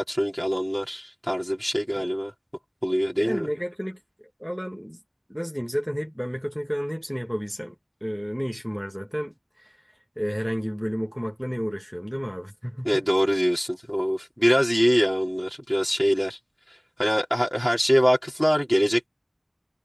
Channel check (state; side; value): identical; both; correlation 1.00